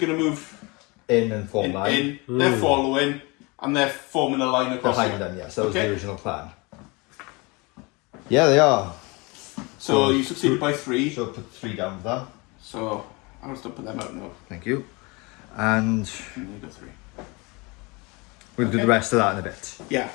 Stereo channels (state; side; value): quieter; right; 26.9 dB